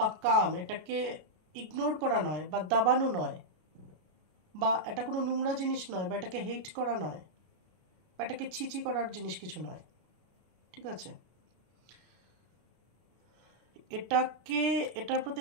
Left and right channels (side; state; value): left; late; 33 ms